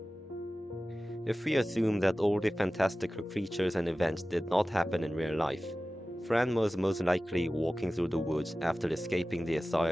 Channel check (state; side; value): normal; both; correlation 0.96